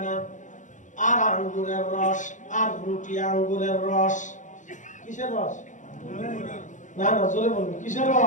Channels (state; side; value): late; right; 0.36 ms